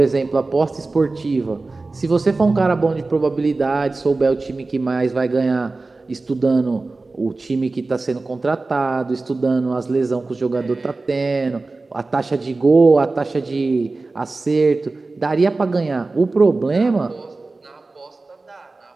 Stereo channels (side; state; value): left; quieter; 3.5 dB